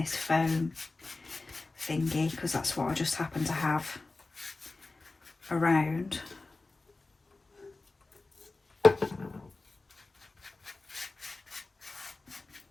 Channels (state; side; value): quieter; right; 3.4 dB